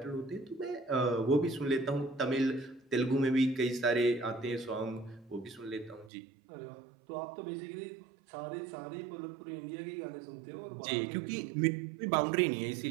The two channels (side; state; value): left; drops out; at 6.1 s